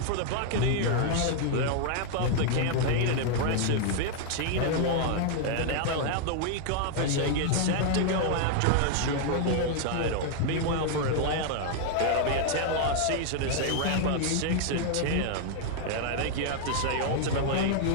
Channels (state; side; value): different; both; correlation 0.00